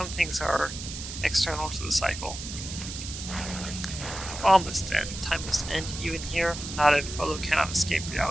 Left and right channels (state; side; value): noise; right; hiss, 9 dB below the sound